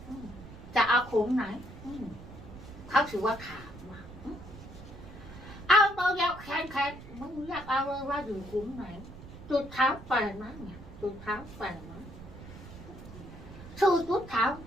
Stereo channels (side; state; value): right; noise; rumble, 15 dB below the sound